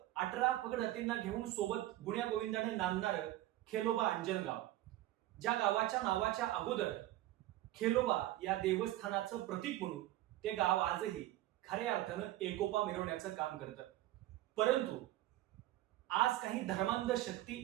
18 पगड हत्तींना घेऊन सोबत गुण्या गोविंदाने नांदणारं खेलोबा अंजनगाव, ज्या गावाच्या नावाच्या अगोदर खेलोबा या देवस्थानाचं प्रतीक म्हणून ते गाव आजही खऱ्या अर्थानं एकोपा मिरवण्याचं काम करतं. परंतु आज काही धर्मांध शक्ती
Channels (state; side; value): quieter; left; 15.3 dB